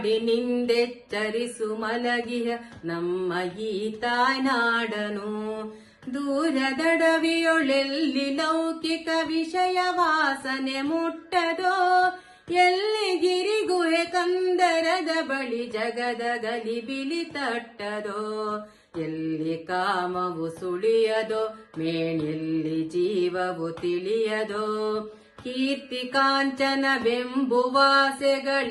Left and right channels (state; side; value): identical; both; correlation 1.00